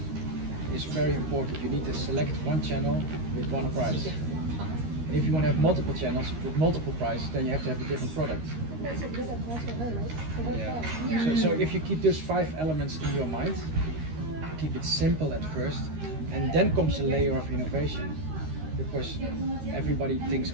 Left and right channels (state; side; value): late; left; 13 ms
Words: is very important. You need to select one channel with one price. And if you want to have multiple channels with multiple prices, then you have to have a different product. That's a good advice for her, right? For her Yeah. client. So if you keep those 5 elements in your mind, keep it simple at first, and then comes a layer of innovation. Because everybody thinks,